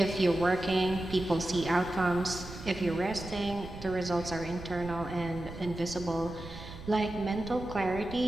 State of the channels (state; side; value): noise; right; rumble, 12 dB below the sound